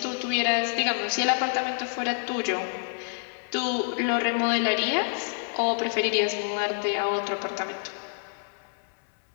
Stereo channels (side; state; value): right; silent; 60 dB below the other